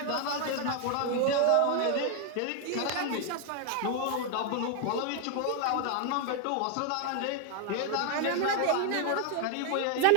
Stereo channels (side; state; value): both; different; correlation 0.01